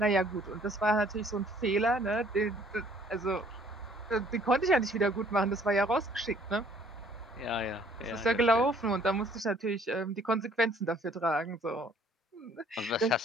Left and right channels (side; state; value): both; normal; correlation 0.59